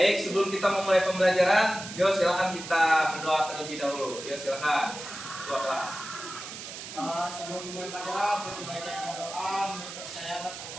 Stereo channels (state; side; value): noise; right; hiss, 10 dB below the sound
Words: Sebelum kita memulai pembelajaran, yuk silakan kita berdoa terlebih dahulu. Yuk silakan. Ketua kelas. Sebelum memulai pelajaran, lebih baik kita doa menurut saya